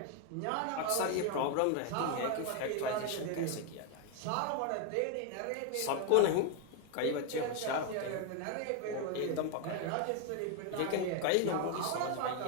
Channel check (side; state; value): both; different; correlation 0.01